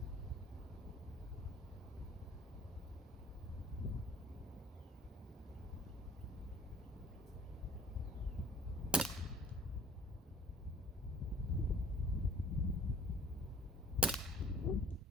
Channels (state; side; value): normal; both; correlation 0.53